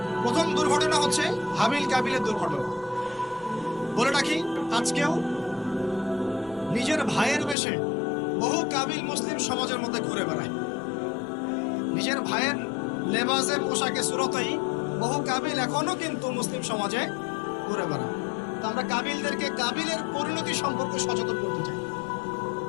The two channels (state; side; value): drops out; right; at 7.6 s